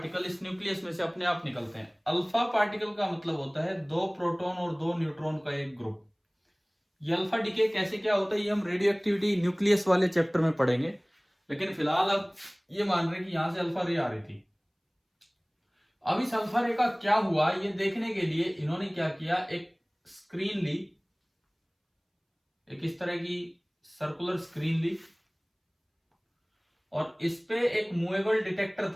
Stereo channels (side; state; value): both; identical; correlation 1.00